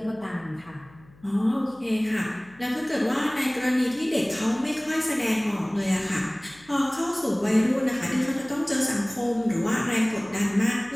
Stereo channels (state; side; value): noise; left; hum, 26 dB below the sound